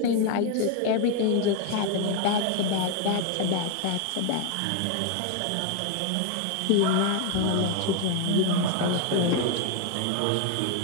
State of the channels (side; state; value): both; different; correlation 0.01